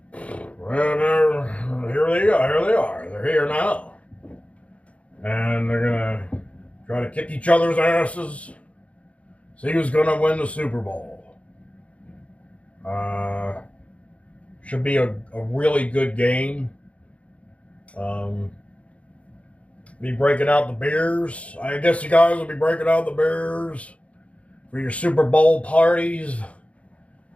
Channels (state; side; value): late; right; 0.064 ms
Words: well, here they go. Here they are. They're here now. And they're going to try to kick each other's asses. See who's going to win the Super Bowl. Should be a really good game. Be breaking out the beers. I guess you guys will be breaking out the beers for your Super Bowl parties.